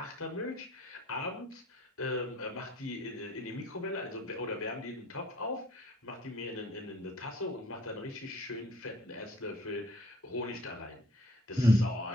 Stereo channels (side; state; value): both; normal; correlation 0.55